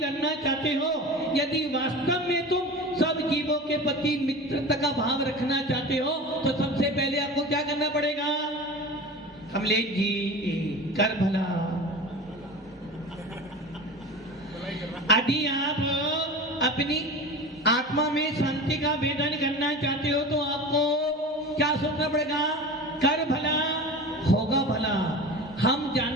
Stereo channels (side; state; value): both; normal; correlation 0.33